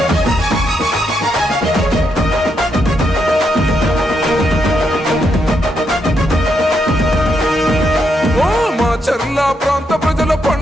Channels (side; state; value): both; normal; correlation 0.79